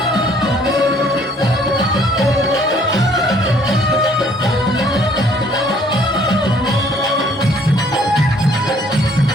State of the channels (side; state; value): both; normal; correlation 0.60